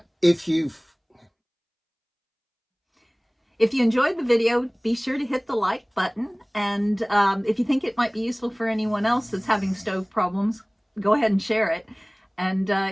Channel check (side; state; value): both; identical; correlation 1.00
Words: If you enjoyed the video, be sure to hit the like button, and if you think it might be useful for anyone else that's having stove problems, go ahead and share it. And